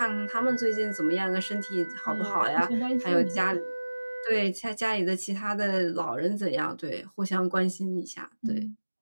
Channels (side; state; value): both; inverted; correlation -1.00